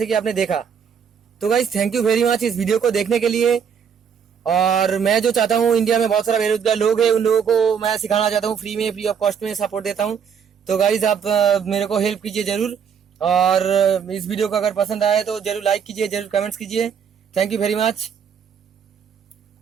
कि आपने देखा। तो guys thank you very much इस वीडियो को देखने के लिए। और मैं जो चाहता हूँ, इंडिया में बहुत सारा बेरोजगार लोग हैं, उन लोगों को मैं सिखाना चाहता हूँ फ्री में, फ्री ऑफ कॉस्ट में सपोर्ट देता हूँ। तो गाइस आप मेरे को हेल्प कीजिए जरूर, और इस वीडियो को अगर पसंद आए तो जरूर लाइक कीजिए, जरूर कमेंट्स कीजिए। Thank you very much.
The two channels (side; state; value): left; quieter; 7.3 dB